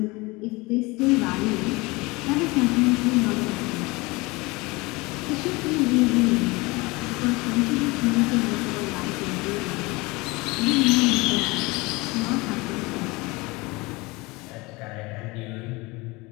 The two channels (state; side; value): quieter; right; 24.0 dB